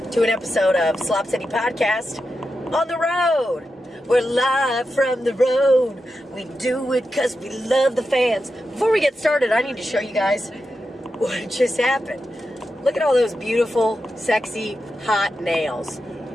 to an episode of Slop City Podcast on the road. We're live from the road. We do it because we love the fans. Before we get started, I need to show you guys what just happened. Look at all those beautiful, sexy, hot nails.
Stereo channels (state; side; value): normal; both; correlation 0.89